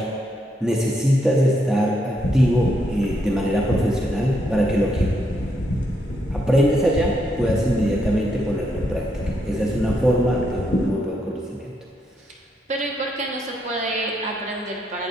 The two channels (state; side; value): normal; both; correlation 0.78